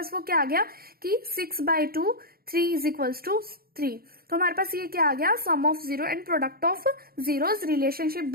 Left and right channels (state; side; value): late; left; 0.44 ms